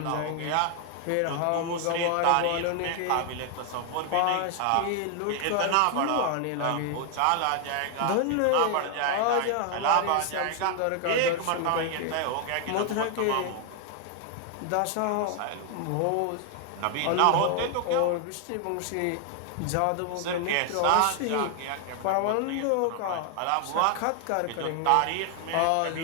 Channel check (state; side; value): different; both; correlation 0.00